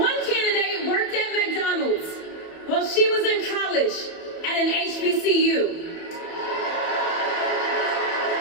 candidate worked at McDonald's while she was in college at an HBCU.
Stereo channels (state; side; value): late; right; 29 ms